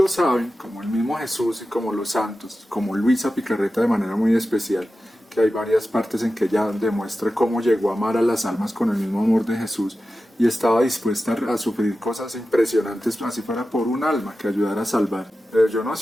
saben, como el mismo Jesús y como los santos, como Luisa Picarreta de manera muy especial, que hay varias partes en que ella demuestra cómo llegó a amar a las almas con el mismo amor de Jesús y estaba dispuesta a sufrir cosas impresionantes, así fuera por un alma que ayudara a salvar. Yo no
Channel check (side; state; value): both; normal; correlation 0.93